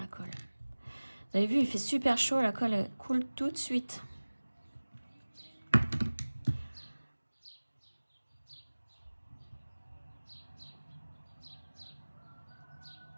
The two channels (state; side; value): inverted; both; correlation -1.00